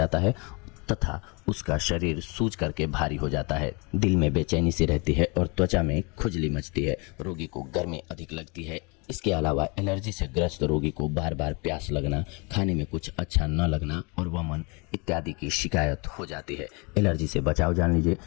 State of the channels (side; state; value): right; quieter; 30.5 dB